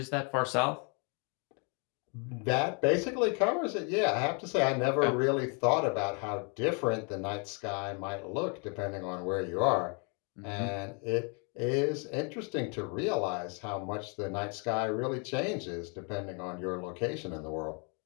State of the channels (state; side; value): quieter; right; 36.2 dB